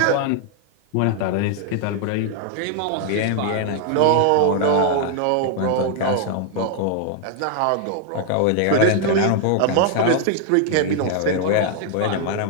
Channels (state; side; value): different; both; correlation 0.00